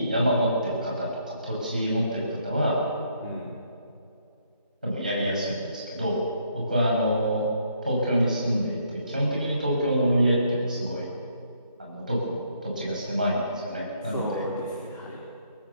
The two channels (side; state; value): both; inverted; correlation -0.70